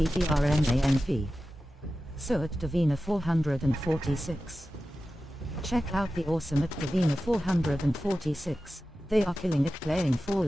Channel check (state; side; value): normal; both; correlation 0.94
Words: So at Davina 446. Check out the awesome at Davina 446. They are killing it playing